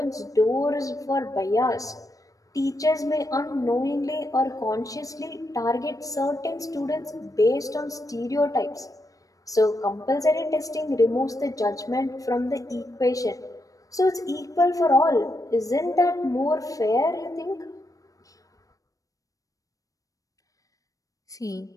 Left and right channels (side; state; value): right; late; 0.16 ms